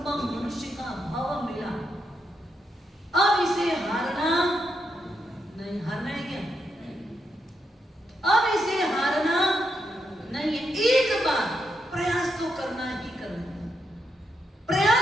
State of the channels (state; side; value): normal; both; correlation 0.82